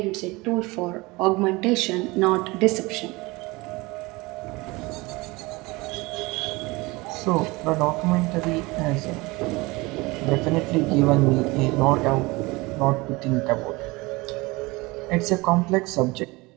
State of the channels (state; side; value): quieter; left; 23.2 dB